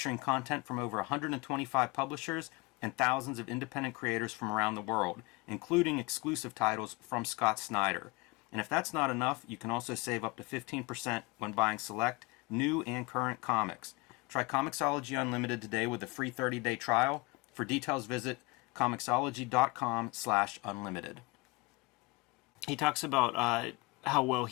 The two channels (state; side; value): quieter; right; 26.0 dB